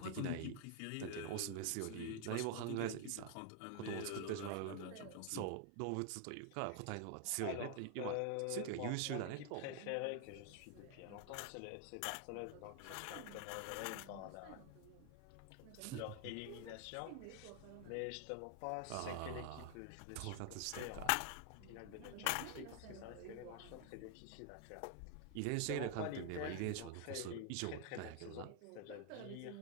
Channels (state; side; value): different; both; correlation 0.00